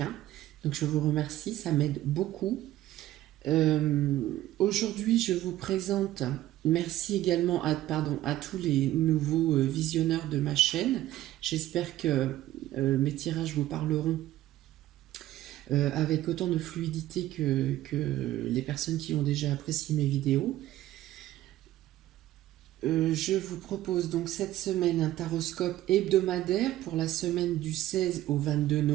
Donc je vous remercie, ça m'aide beaucoup. Aujourd'hui, je vous présente, merci également à tous les nouveaux visionneurs de ma chaîne. J'espère que mes tirages vous parleront avec autant de fluidité que les personnes qui ont déjà apprécié mes vidéos. Je vous propose donc cette semaine un taroscope hebdomadaire pour la semaine du 16 au 22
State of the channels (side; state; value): left; quieter; 14.6 dB